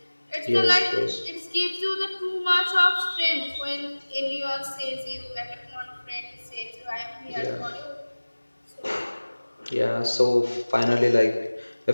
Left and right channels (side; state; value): both; inverted; correlation -1.00